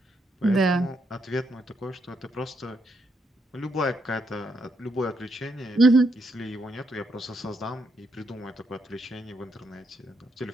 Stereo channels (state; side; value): normal; both; correlation 0.77